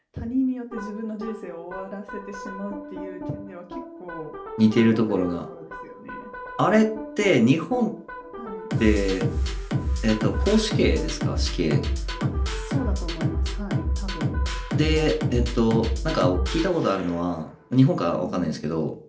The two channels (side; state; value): both; identical; correlation 1.00